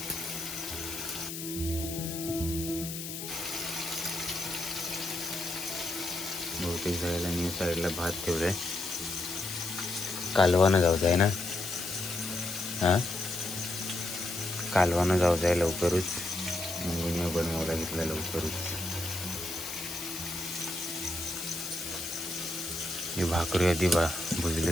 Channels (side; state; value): left; noise; hiss, 7 dB below the sound